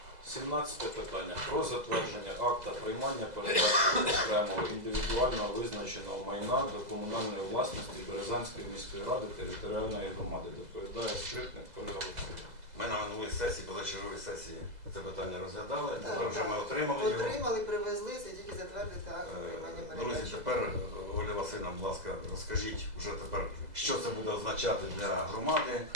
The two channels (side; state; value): left; late; 2.0 ms